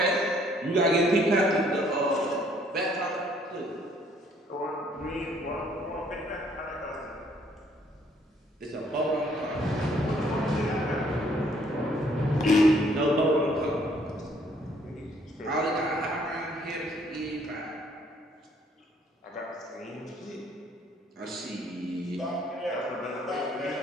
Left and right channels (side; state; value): both; normal; correlation 0.64